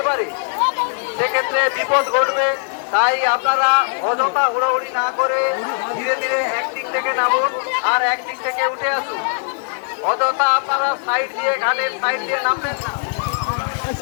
পারে, সেক্ষেত্রে বিপদ ঘটবে। তাই আপনারা অযথা হুড়োহুড়ি না করে ধীরে ধীরে একদিক থেকে নামুন আর একদিক থেকে উঠে আসুন। অযথা আপনারা সাইড দিয়ে ঘাটের সাইড দিয়ে নামবেন না।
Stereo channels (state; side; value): silent; right; digital silence